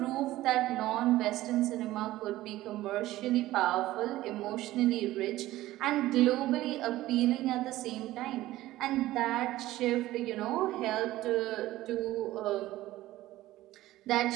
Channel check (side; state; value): left; quieter; 16.1 dB